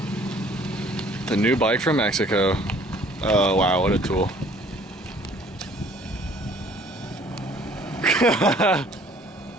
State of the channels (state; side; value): normal; both; correlation 0.56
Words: The new bike from Mexico. Oh, wow, what a tool.